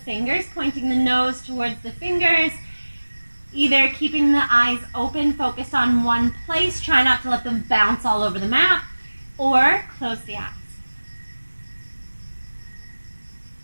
fingers, pointing the nose towards the fingers, either keeping the eyes open, focused on one place, try not to let them bounce all over the mat, or close the eyes.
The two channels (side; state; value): both; inverted; correlation -1.00